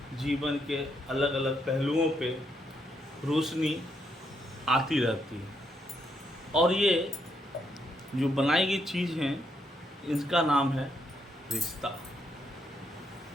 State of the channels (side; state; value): both; normal; correlation 0.76